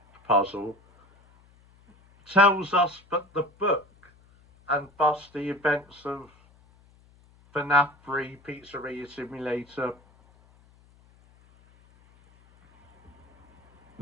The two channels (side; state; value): left; noise; hum, 30 dB below the sound